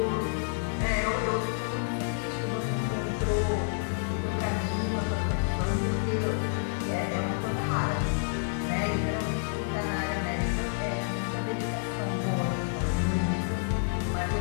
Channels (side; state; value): right; silent; digital silence